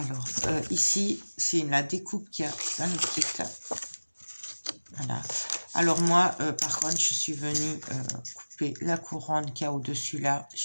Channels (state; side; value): inverted; both; correlation -1.00